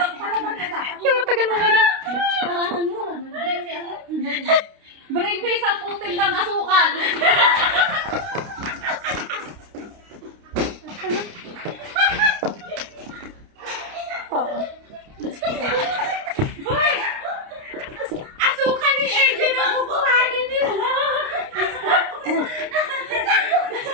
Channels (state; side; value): late; left; 29 ms